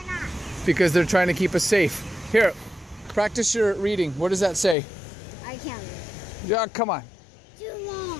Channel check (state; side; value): drops out; right; at 4.8 s